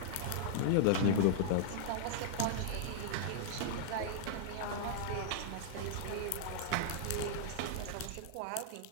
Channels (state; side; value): different; both; correlation -0.02